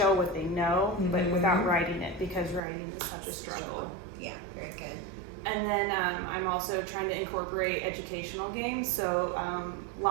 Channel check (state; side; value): drops out; left; at 2.6 s